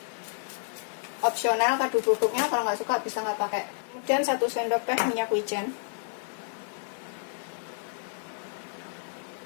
Opsional kaldu bubuknya, kalau nggak suka bisa nggak pakai. Kemudian 1 sendok teh minyak wijen.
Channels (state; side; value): silent; right; 58 dB below the other